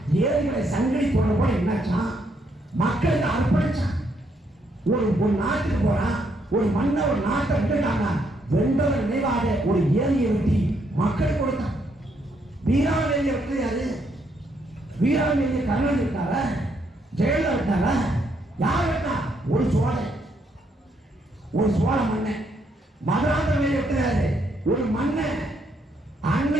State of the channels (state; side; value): normal; both; correlation 0.74